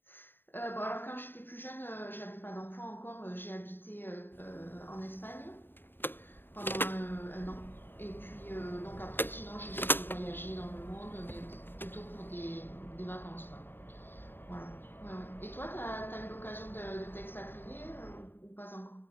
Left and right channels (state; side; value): late; right; 0.097 ms